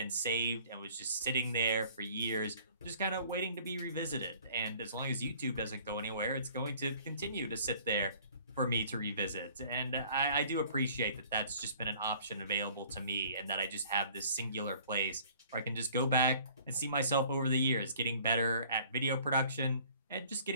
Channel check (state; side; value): inverted; both; correlation -0.53